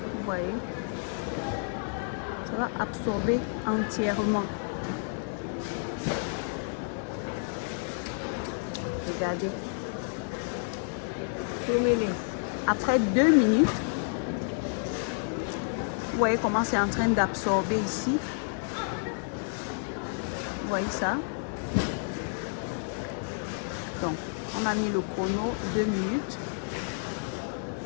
Vous voyez, ça va absorber entièrement. Regardez. Après 2 minutes, vous voyez comment c'est en train d'absorber ici. Vous voyez ça? Donc, on a mis le chrono 2 minutes.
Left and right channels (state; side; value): silent; right; 58 dB below the other